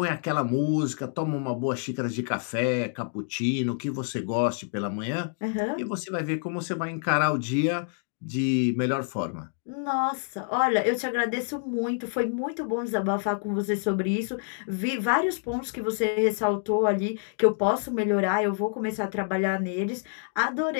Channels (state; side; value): silent; right; digital silence